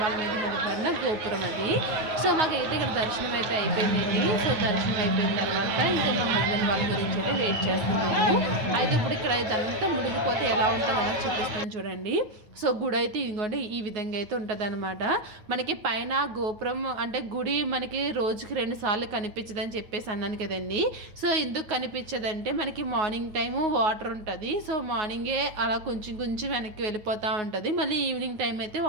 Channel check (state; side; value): late; left; 9.2 ms